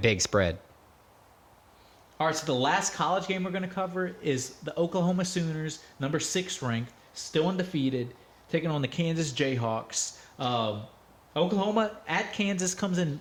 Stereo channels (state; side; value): identical; both; correlation 1.00